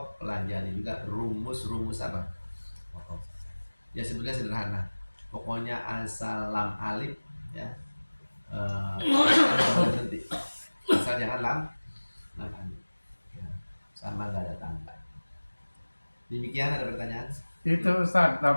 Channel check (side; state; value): both; inverted; correlation -1.00